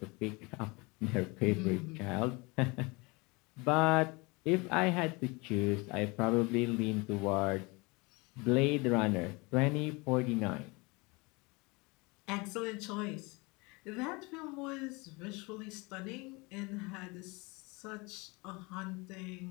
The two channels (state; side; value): quieter; right; 26.6 dB